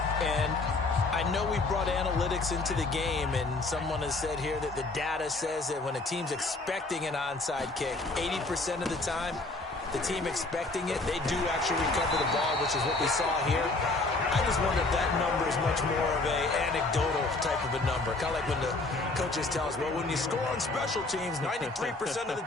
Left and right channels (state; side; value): quieter; right; 3.2 dB